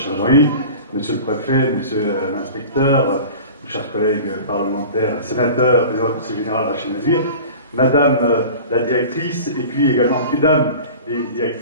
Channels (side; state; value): both; inverted; correlation -0.38